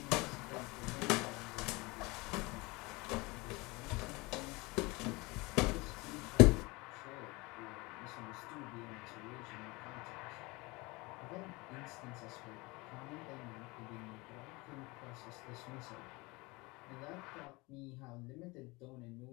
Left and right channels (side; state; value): right; quieter; 24.4 dB